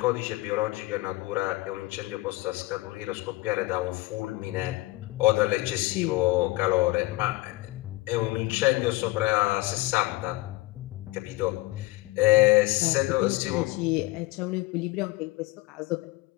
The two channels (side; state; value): right; quieter; 20.2 dB